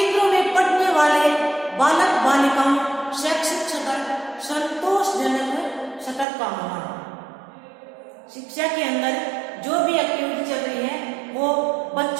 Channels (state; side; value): drops out; left; at 6.2 s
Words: में पढ़ने वाले बालक बालिकाओं शैक्षिक स्तर संतोषजनक स्तर का होना। शिक्षा के अंदर जो भी एक्टिविटी चल रही है वो